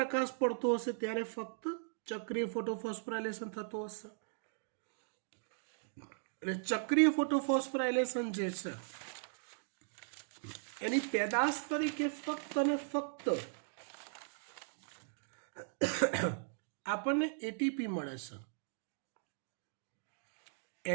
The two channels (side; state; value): left; silent; digital silence